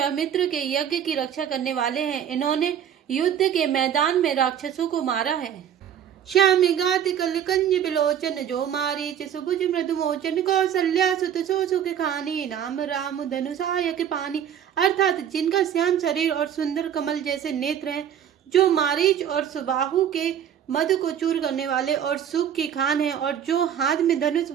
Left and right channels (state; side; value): quieter; left; 9.3 dB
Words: के यज्ञ की रक्षा करने वाले हैं। इन्होंने युद्ध के मैदान में राक्षसों को मारा है। श्याम गात कल कंज बिलोचन जो मारी सुभुज मृदु मोचन कौशल्या सुत सो सुख खानी नाम राम धनुषायक पानी। अर्थात जिनका श्याम शरीर और सुंदर कमल जैसे नेत्र हैं, जो मारीच और सुबाहु के मद को चूर करने वाले और सुख की खान है, और जो हाथ में धनुष